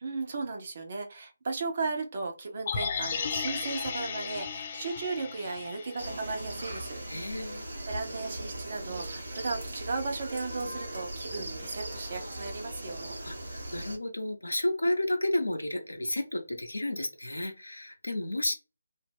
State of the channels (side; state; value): both; inverted; correlation -0.87